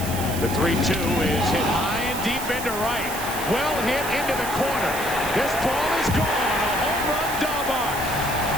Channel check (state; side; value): noise; right; hiss, 8 dB below the sound